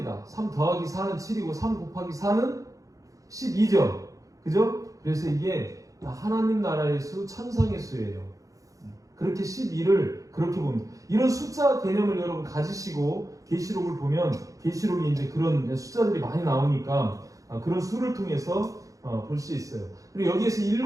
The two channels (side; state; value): left; late; 0.16 ms